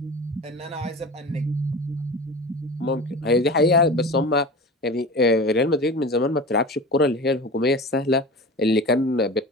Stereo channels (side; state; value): both; normal; correlation 0.33